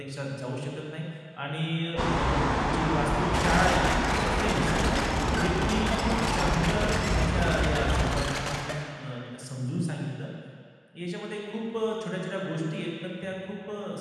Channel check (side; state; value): both; identical; correlation 1.00